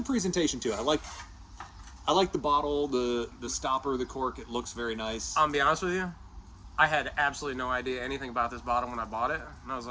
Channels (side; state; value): both; identical; correlation 1.00